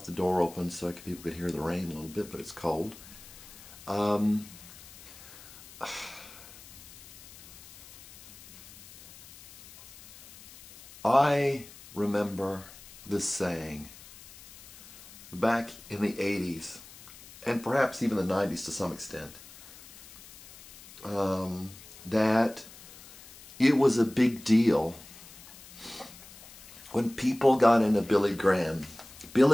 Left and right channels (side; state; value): left; noise; hiss, 19 dB below the sound